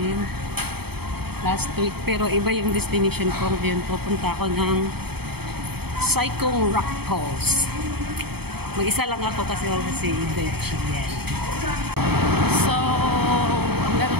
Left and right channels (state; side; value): late; left; 0.97 ms